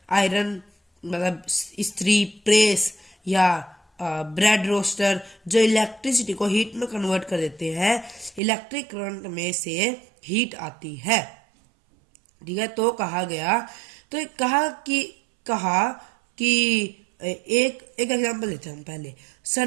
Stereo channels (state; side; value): drops out; left; at 8.4 s